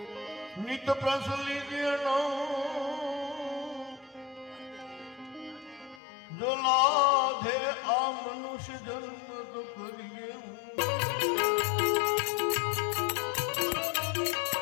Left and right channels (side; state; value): right; drops out; at 6.0 s